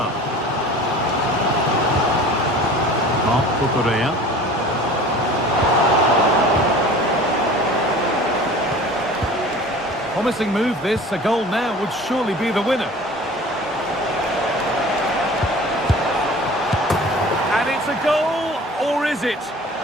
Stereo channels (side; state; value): both; normal; correlation 0.43